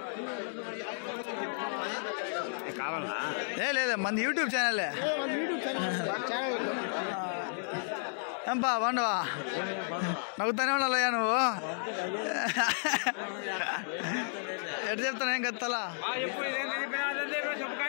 లేదా మంది యూట్యూబ్ ఛానలే. ఏంపా బాగుండవా? నవ్వుతానే ఉండాలయ్యా నువ్వు. ఎటు చెప్తాను ఏం కదా తల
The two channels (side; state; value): right; silent; 56 dB below the other